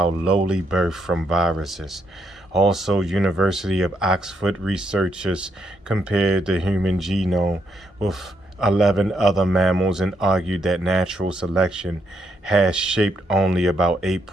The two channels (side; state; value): both; normal; correlation 0.77